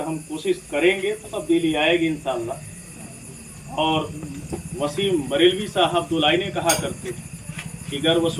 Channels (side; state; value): both; identical; correlation 1.00